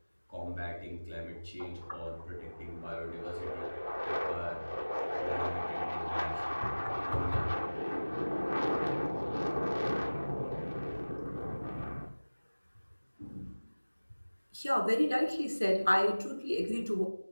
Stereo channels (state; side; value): inverted; both; correlation -1.00